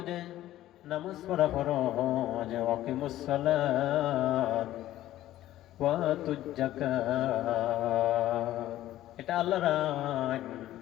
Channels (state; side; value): quieter; right; 14.1 dB